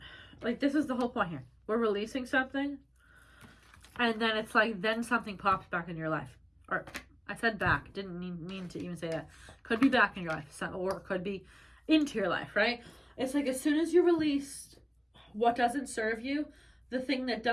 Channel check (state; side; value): identical; both; correlation 1.00